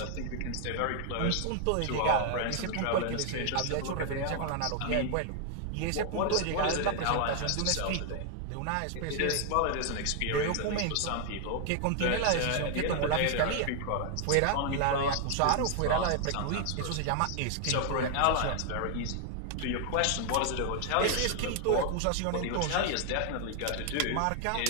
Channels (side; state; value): both; different; correlation 0.00